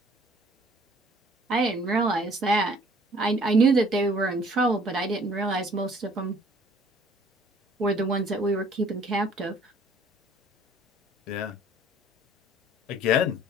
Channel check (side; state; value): both; normal; correlation 0.56